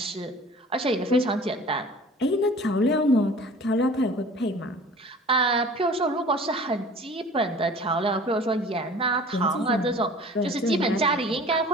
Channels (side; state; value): both; normal; correlation 0.45